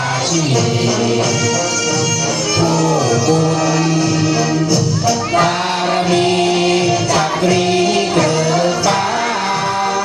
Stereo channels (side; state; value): both; identical; correlation 1.00